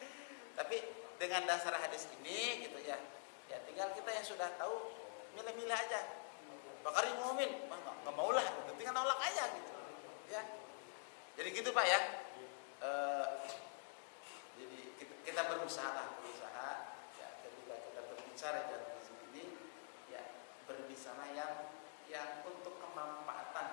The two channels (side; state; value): right; silent; digital silence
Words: Tapi dengan dasar hadis ini gitu ya tinggal kita yang sudah tahu milih-milih aja. Bakari ngomongin, nggak mau lah, gitu. Tinggal nolak aja gitu. Ya, jadi gitu Pak ya. Jadi kita berusaha ya, ketika kita berbicara dalam sini ya berbicara yang untuk